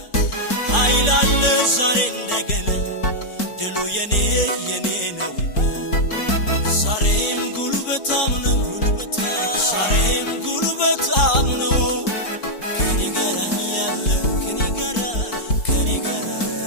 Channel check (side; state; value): right; late; 4.5 ms